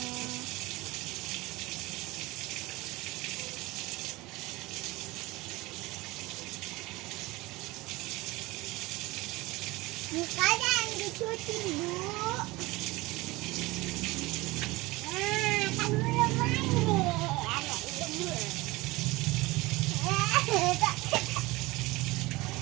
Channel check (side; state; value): left; quieter; 21.3 dB